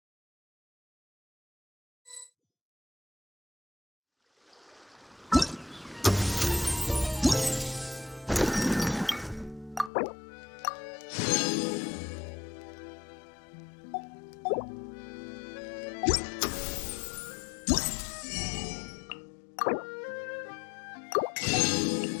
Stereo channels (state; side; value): drops out; right; at 9.9 s